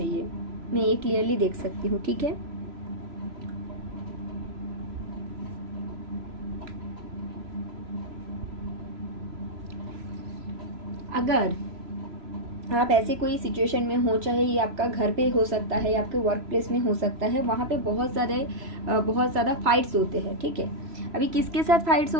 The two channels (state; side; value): late; left; 3.0 ms